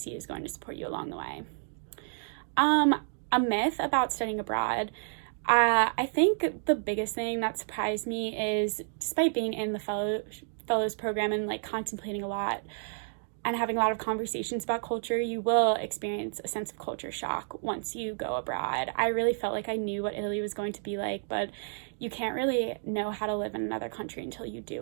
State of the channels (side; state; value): left; silent; digital silence